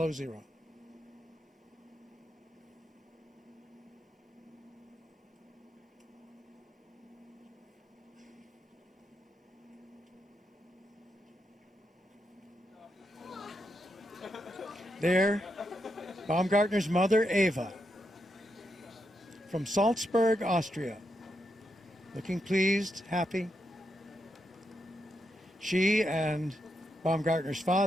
zero. There, Baumgartner's mother, Eva, from Salzburg, Austria, looking pleased, happy. She and Baumgartner's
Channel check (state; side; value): normal; both; correlation 0.83